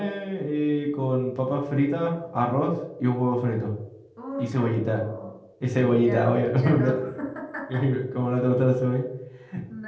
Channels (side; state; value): both; identical; correlation 1.00